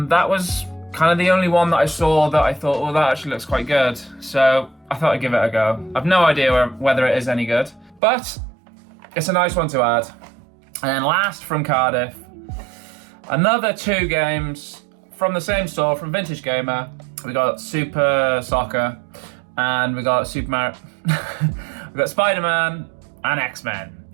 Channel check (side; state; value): left; drops out; at 8.0 s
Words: was kind of the only one that I saw that I thought, well, that actually looks quite good. So I thought I'd give it a go. I've no idea whether it is any good, but it's a nice one to add. And then last from Cardiff, another two games from the same store, from Vintage Gamer. We got Super Soccer and we got Super Mario. We got Spider-Man and X-Men